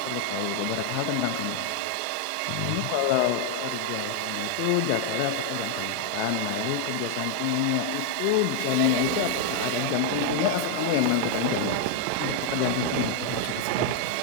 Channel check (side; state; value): both; different; correlation 0.00